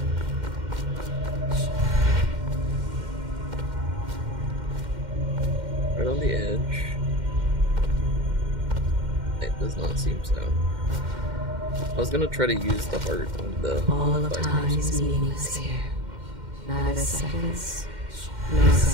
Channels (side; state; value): left; late; 2.1 ms